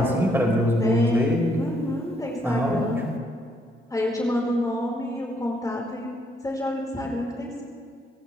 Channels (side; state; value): both; normal; correlation 0.72